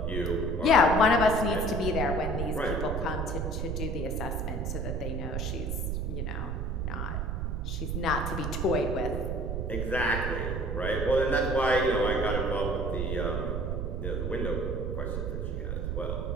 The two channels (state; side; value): noise; right; rumble, 1 dB below the sound